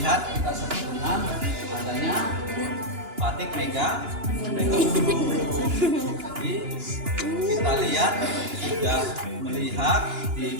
kita sebut dengan adanya batik Mega Bulu. Jadi kita lihat sudah melihat di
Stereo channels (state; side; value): late; left; 2.9 ms